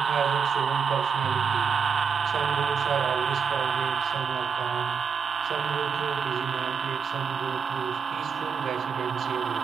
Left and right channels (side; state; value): left; quieter; 6.3 dB